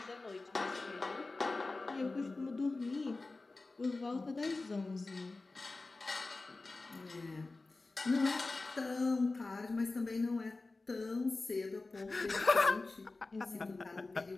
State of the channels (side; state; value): right; quieter; 3.4 dB